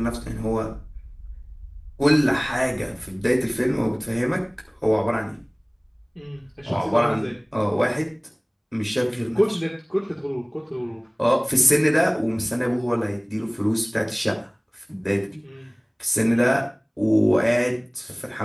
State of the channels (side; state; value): both; identical; correlation 1.00